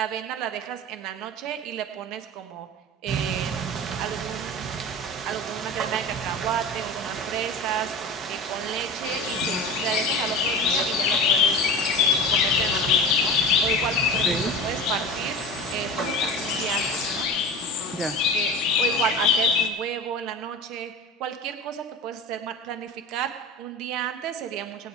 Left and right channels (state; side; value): normal; both; correlation 0.32